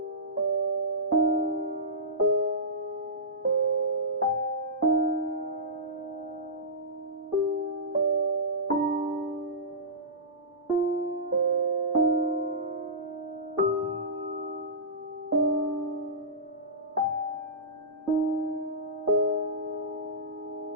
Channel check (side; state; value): both; normal; correlation -0.17